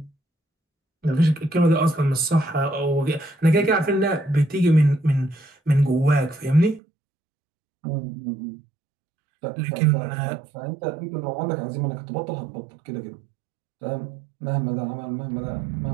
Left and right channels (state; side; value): drops out; left; at 6.8 s